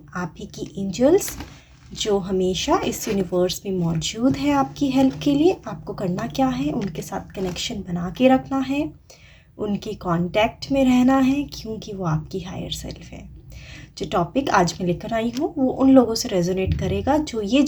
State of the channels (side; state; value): both; identical; correlation 1.00